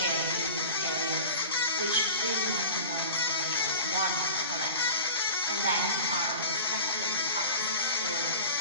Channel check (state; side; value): inverted; both; correlation -0.37